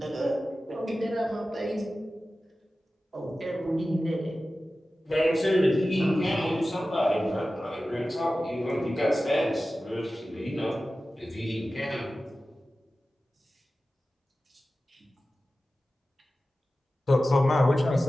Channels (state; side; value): normal; both; correlation 0.95